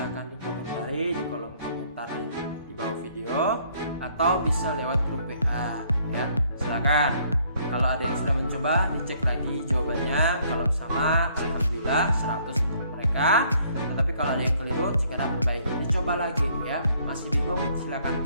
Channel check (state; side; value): inverted; both; correlation -0.64